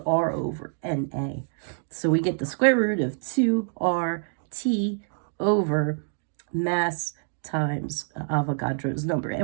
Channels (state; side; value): silent; left; 61 dB below the other